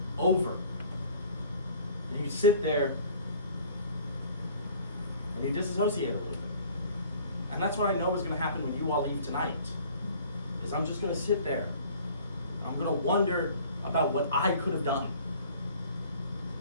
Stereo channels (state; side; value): inverted; both; correlation -0.50